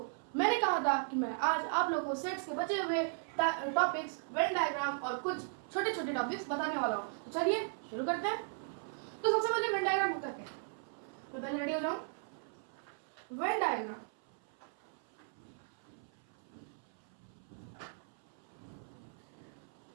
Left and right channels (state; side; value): silent; left; 53 dB below the other